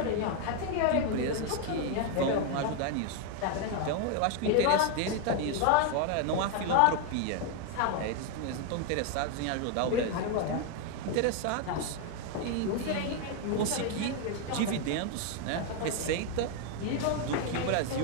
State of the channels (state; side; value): different; both; correlation 0.01